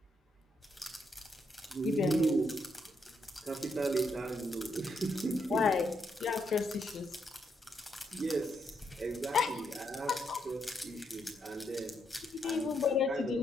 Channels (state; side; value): normal; both; correlation 0.78